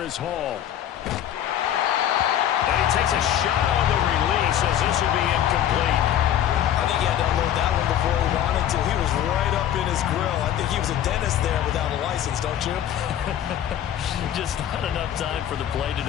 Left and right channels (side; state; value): right; quieter; 10.8 dB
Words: Hall. And he takes a shot on the release as this will be incomplete. I think he had to unload that one before he wanted to. He was right up in his grill. I think he was a dentist there without a license, don't you? Just not enough time for the play to